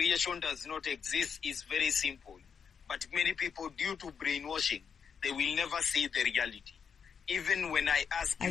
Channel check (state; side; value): quieter; right; 6.7 dB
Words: does not exist is very simple. But many people, due to brainwashing, they will never see the reality. Even when I ask